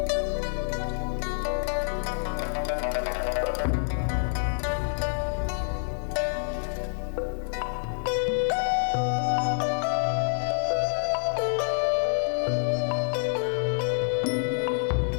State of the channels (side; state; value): right; silent; 60 dB below the other